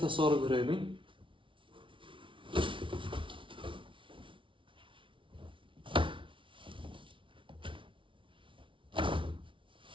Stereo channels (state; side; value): late; left; 0.25 ms